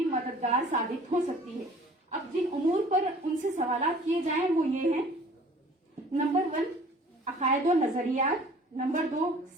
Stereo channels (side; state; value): both; normal; correlation 0.50